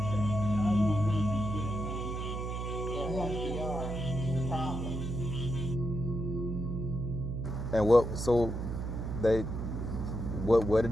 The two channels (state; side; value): noise; right; hum, 4 dB below the sound